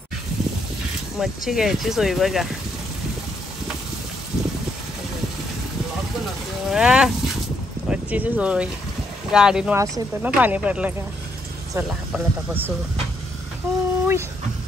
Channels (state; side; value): normal; both; correlation 0.75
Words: मच्छी घ्यायची सोय बघा, मच्छीची सोय। गाडीनं वास येतो ना पाणी पडलं का। चला आपण आता बसू।